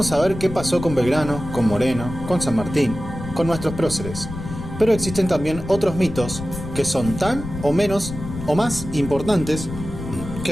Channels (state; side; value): noise; left; rumble, 9 dB below the sound